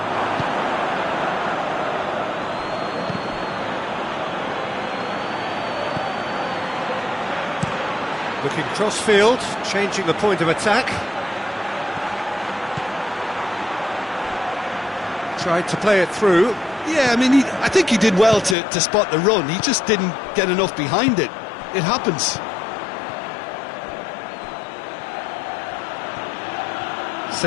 Looking cross-field, changing the point of attack. Tried to play it through. Yeah, I mean, I think he did well to spot the run. He just didn't get enough behind it. It happens.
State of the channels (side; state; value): right; drops out; at 18.6 s